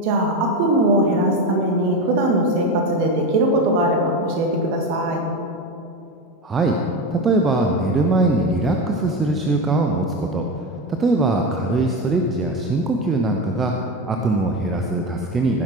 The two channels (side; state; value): both; normal; correlation 0.19